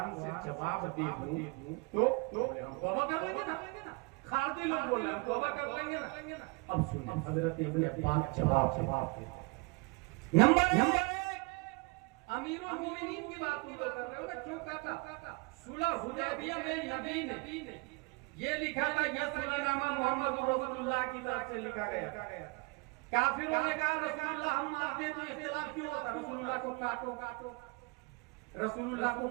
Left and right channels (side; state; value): left; quieter; 29.1 dB